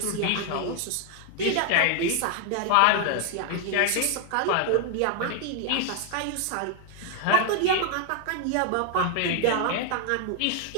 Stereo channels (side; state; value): both; different; correlation 0.00